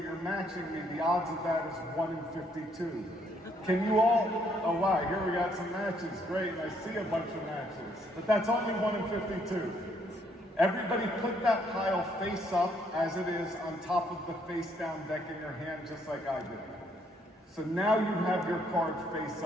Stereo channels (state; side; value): normal; both; correlation 0.69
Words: you're matching me, the odds of that is 1 in 52. Can you all, oh wow, here we got some matches, great, I see a bunch of matches, but that's only 1 in 52. Everybody put that pile face up as it is on top of the face down deck in your hand, just like I did. So now you have your card face